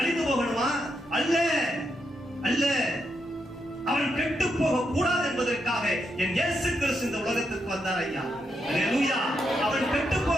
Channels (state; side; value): normal; both; correlation 0.82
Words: போகணுமா? அல்ல அல்ல, அவன் கெட்டு போக கூடாது என்பதற்காக என் இயேசு கிறிஸ்து இந்த உலகத்துக்கு வந்தார். ஐயா அல்லேலூயா. அவன் கெட்டு